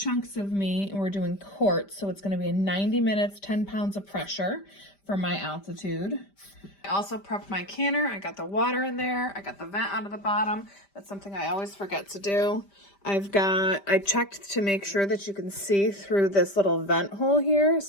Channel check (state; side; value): late; right; 5.1 ms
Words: of meat, and we're doing quarts, so it's going to be a 90 minutes, 10 pounds of pressure for my altitude. I also prepped my canner. I got the water in there. I got the vent out of the bottom. That's something I always forget to do. I checked to make sure that you can see through this little vent hole here.